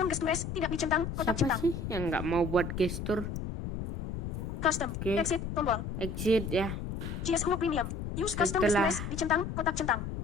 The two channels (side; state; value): left; noise; rumble, 5 dB below the sound